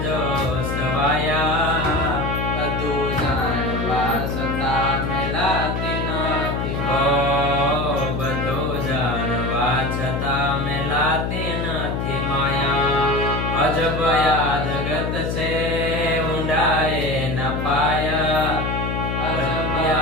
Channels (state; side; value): noise; left; hum, 1 dB below the sound